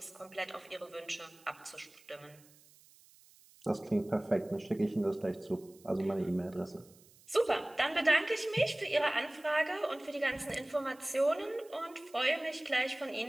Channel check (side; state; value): right; noise; hiss, 26 dB below the sound